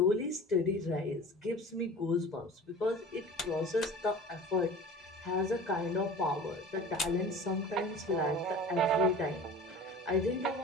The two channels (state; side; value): normal; both; correlation 0.39